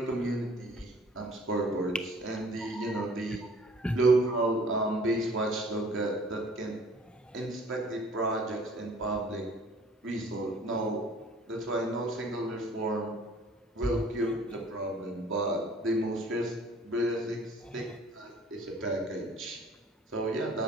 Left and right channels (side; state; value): both; normal; correlation 0.53